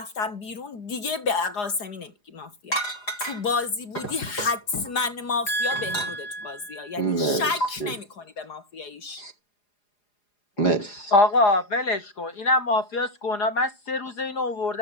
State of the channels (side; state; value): right; late; 4.9 ms